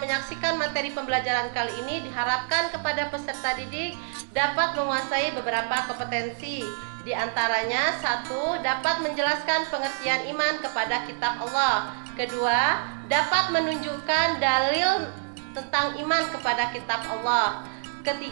menyaksikan materi pembelajaran kali ini, diharapkan kepada peserta didik dapat menguasai beberapa kompetensi. Di antaranya, 1. Dapat menjelaskan pengertian iman kepada kitab Allah. Kedua, dapat menunjukkan dalil tentang iman kepada kitab Allah.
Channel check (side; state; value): left; silent; digital silence